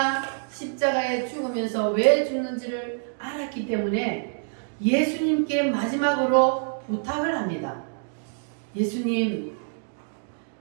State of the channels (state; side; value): silent; left; digital silence